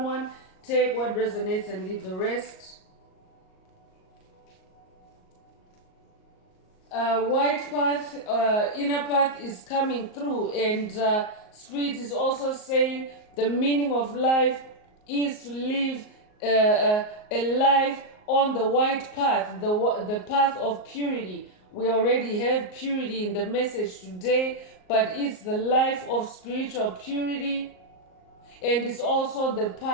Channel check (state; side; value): late; right; 38 ms